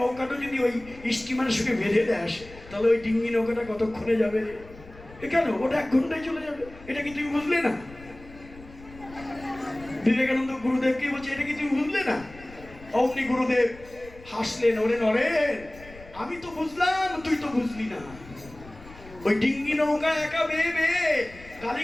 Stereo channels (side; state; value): left; noise; rumble, 19 dB below the sound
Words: যদি ওই স্টিমারের সঙ্গে বেঁধে দেয়, তাহলে ওই ডিঙ্গি নৌকাটা কতক্ষণে যাবে রে? এখানে ওটা 1 ঘন্টায় চলে যাবে। এটা কি তুমি বুঝলে না? বিবেকানন্দ গুরুদেবকে বলছে, এটা কি তুমি বুঝলে না? অমনি গুরুদেব হাসলেন, ওরে নরেন, আমি তো বুঝলাম, তুই তো বুঝলি না। ওই ডিঙ্গি নৌকা একা বেয়ে বেয়ে